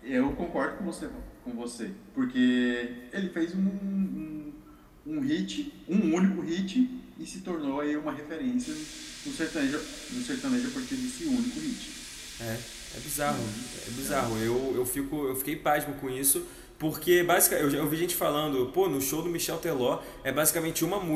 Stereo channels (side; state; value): both; identical; correlation 1.00